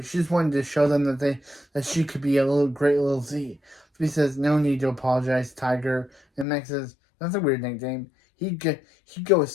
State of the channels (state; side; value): drops out; right; at 6.5 s